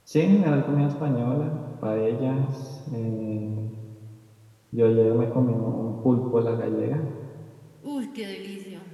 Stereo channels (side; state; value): both; identical; correlation 1.00